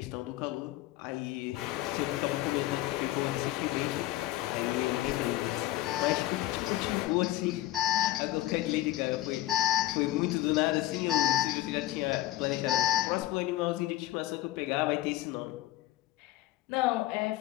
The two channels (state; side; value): quieter; right; 15.8 dB